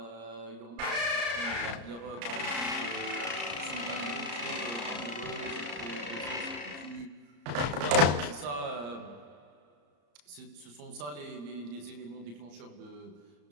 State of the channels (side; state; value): left; late; 34 ms